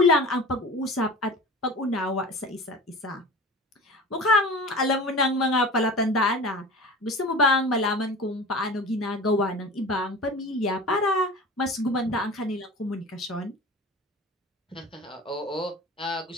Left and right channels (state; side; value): normal; both; correlation 0.36